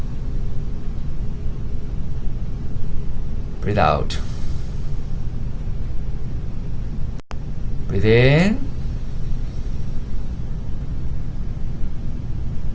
Breathe out. Breathe in.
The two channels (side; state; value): both; identical; correlation 1.00